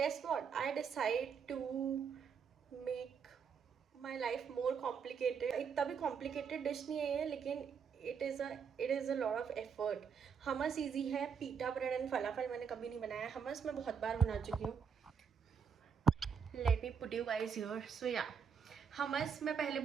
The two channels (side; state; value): left; quieter; 6.5 dB